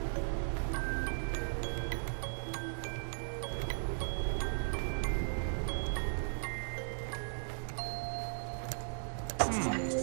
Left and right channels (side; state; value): left; silent; digital silence